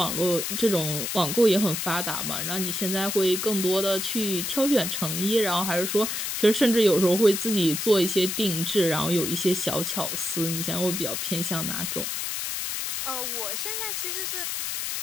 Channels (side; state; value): left; noise; hiss, 3 dB below the sound